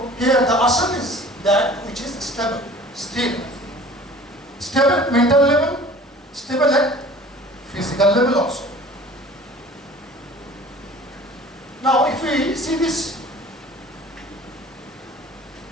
here the asana is that which is stable, still. Stable at mental level, stable at physical level also. Now if we see these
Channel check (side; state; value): both; normal; correlation 0.46